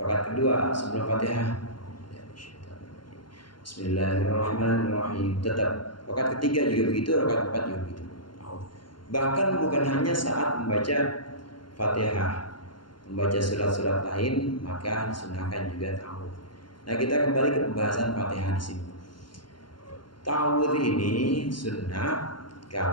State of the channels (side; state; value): right; late; 0.72 ms